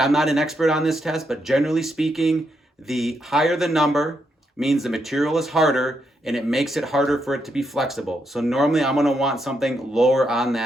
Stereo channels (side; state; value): both; normal; correlation 0.80